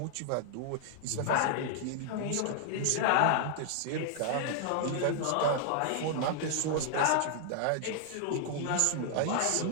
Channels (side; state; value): both; different; correlation -0.01